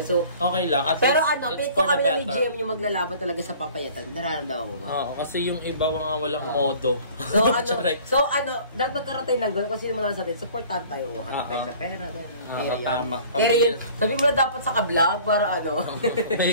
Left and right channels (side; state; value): both; inverted; correlation -0.49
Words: So, Okay lang, at pero least pick it's ko for the kami ni better. GM yung maglalaban talaga sa papayatan. Nararamdaman mo ba? Oo, kasi yung iba mga walang modo. So, Charay. dapat magkaroon tayo ng gano'n. Kung sino man sa atin, supportan tayo. Hanap tayo sa pera. Tama. Pero yun, sabi mo na dapat sa ka-vlog para May